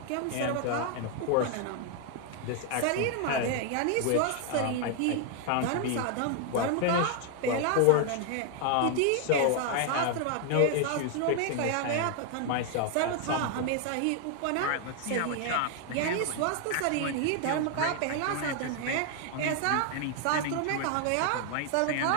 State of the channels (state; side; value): different; both; correlation 0.00